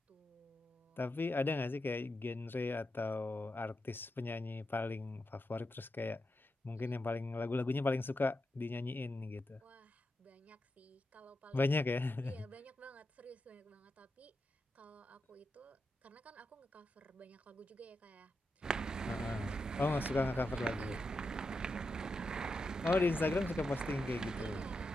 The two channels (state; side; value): normal; both; correlation 0.87